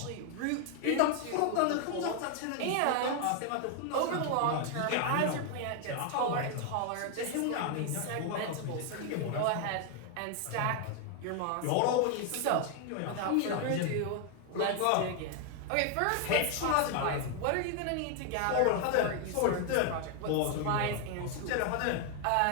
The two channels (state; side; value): different; both; correlation 0.00